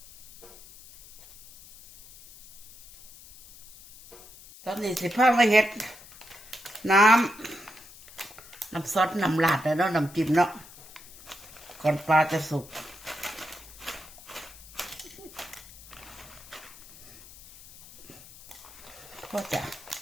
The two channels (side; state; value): left; noise; hiss, 19 dB below the sound